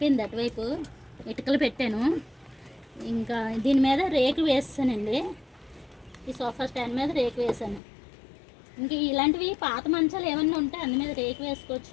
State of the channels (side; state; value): right; drops out; at 7.8 s